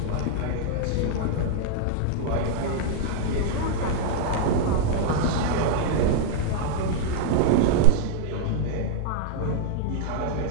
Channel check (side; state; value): both; different; correlation 0.00